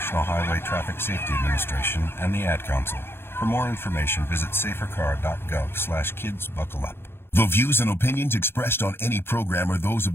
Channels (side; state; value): right; late; 0.11 ms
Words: Highway Traffic Safety Administration and the Ad Council. For more information, visit safercar.gov/kidsbuckleup. The views and opinions expressed on any program are those of